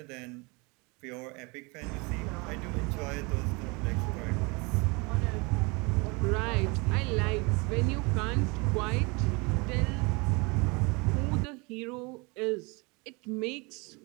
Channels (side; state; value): left; quieter; 28.3 dB